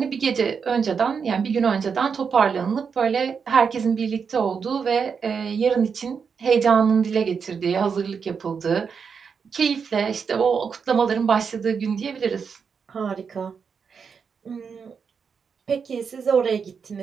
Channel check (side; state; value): left; quieter; 6.1 dB